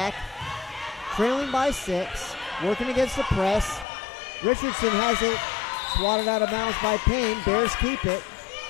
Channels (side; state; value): right; drops out; at 3.9 s